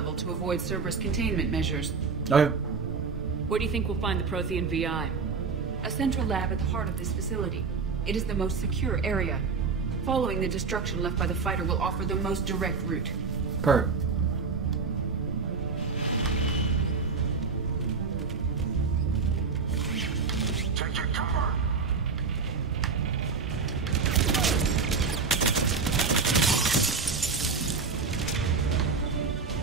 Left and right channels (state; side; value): quieter; left; 4.9 dB